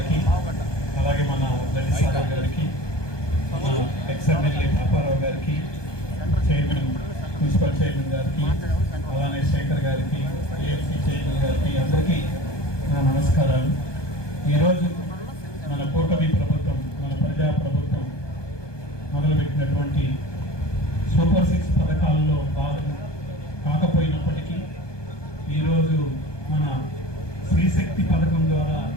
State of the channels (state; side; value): late; right; 1.2 ms